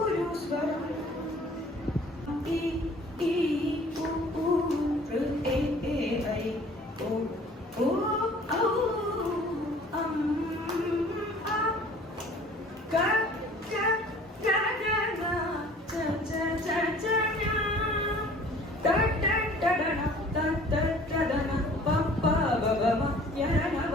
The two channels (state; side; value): normal; both; correlation 0.51